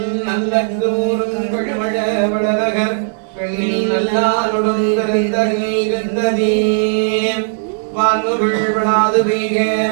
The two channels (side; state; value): left; silent; digital silence